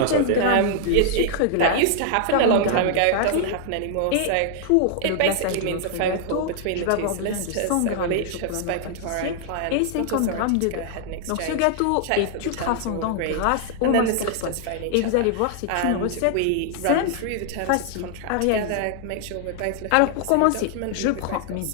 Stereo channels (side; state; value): both; different; correlation 0.00